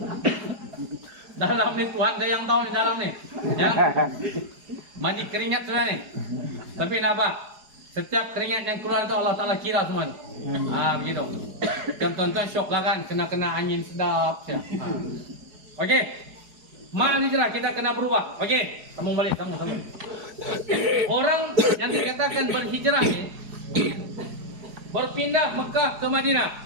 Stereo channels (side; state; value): left; late; 4.8 ms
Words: Dalam ni Tuhan saya yang tahu ni dalam ni. Ya. Mandi keringat sudah ni. Tapi nak apa? Setiap keringat yang keluar tu Allah Ta'ala kira semua. Begitu. Dan tuan-tuan syok lah kan. Kena angin sedap. Okey. Mal hijrah kita kena berubah. Okey. Sambung balik. Sambung. Orang yang dikatakan berhijrah ni. Berpindah Mekah ke Madinah.